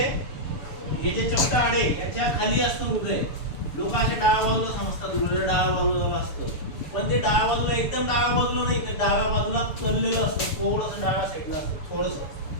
हे जे चपटा हाड आहे, याच्या खाली असतं हृदय. लोक असे डाव्या बाजूला समजतात, हृदय डाव्या बाजूला असतं, पण ते डाव्या बाजूला, एकदम डाव्या बाजूला नाही, तर डाव्या बाजूला कललेलं असतं, थोडंसं डाव्या साईडला असतं, थोडंसं,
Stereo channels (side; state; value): right; late; 6.9 ms